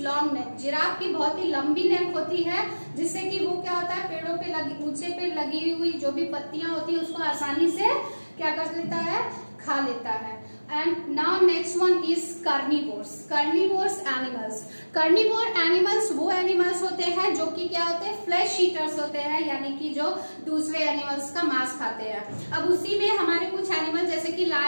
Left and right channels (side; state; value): both; inverted; correlation -1.00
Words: neck. Giraffe की बहुत ही लंबी नेक होती है, जिससे कि वो क्या होता है, पेड़ों पे लगी, ऊंचे पे लगी हुई जो भी पत्तियां होती है उसको आसानी से क्या कर लेता है, खा लेता है। And now next one is carnivores. Carnivores animals, carnivore animals वो एनिमल्स होते हैं जो कि क्या होते हैं, फ्लैश ईटर्स होते हैं, यानी कि जो दूसरे एनिमल्स का मांस खाते हैं। अब उसी में हमारे कुछ एनिमल जैसे कि